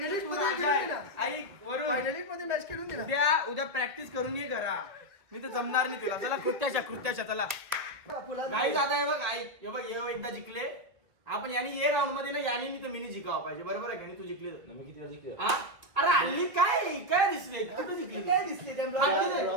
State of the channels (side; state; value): left; late; 2.0 ms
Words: ऐक वरून फायनलिस्ट मध्ये मॅच खेळून दिला उद्या प्रॅक्टिस करून ये घरा मी तर जमणार नाही तुला चला कृत्याच्या चला नाही जाता हे बघ ऐक हे बघ हे एकदा जिंकले आपण यानी ये राऊंड मध्ये ना यानी मी तर मिनी जिंकावं पाहिजे बरोबर आहे का नाही तू जिंकले मी किती वेळा जिंकलो? अरे हल्ली काय दिसले कुठं जिंकले काय दिसले